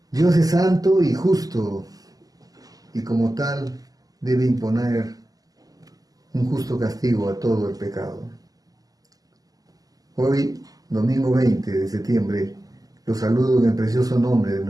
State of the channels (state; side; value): late; left; 0.17 ms